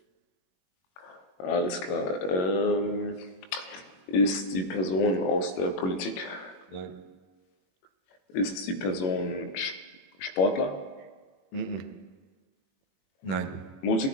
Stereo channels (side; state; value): right; late; 21 ms